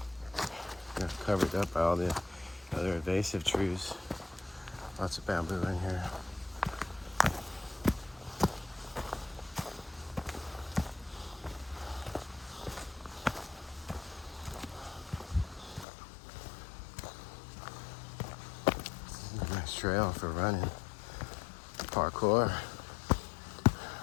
Got covered up by all the other invasive trees. Lots of bamboo in here. trail for running. Parkour.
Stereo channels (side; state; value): right; drops out; at 15.9 s